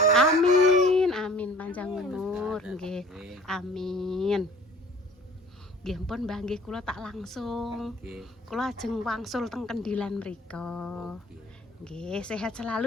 Amin, amin panjang umur nggih. Amin. Nggih pun Mbah nggih kula tak langsung. Nggih. Kula ajeng wangsul teng Kendilan mriko. Nggih. Nggih, sehat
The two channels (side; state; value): both; normal; correlation 0.49